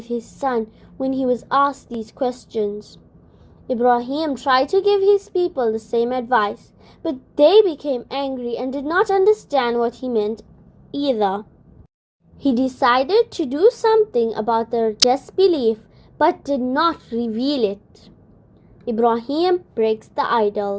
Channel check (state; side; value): identical; both; correlation 1.00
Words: his son when he was asked these questions. Ibrahim tried to give his people the same advice, but they became angry and did not understand what he meant either. He decided to do something about their disbelief, but did not reveal it. Ibrahim breaks the